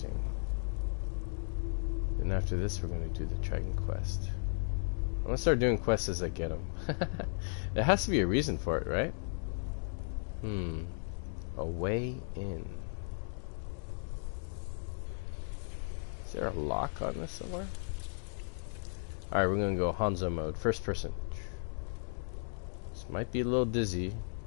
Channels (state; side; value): silent; right; digital silence